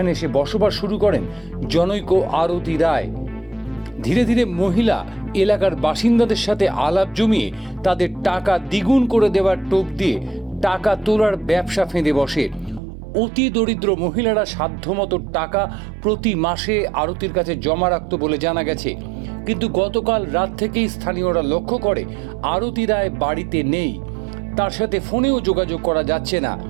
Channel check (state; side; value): drops out; left; at 12.8 s